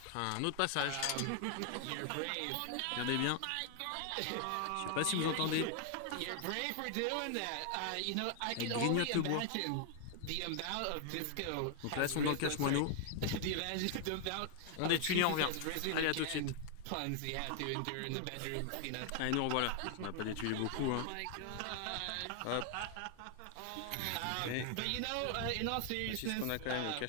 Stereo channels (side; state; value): both; different; correlation 0.00